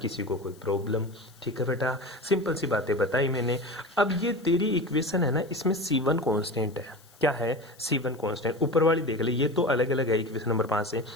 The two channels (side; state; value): left; noise; hiss, 27 dB below the sound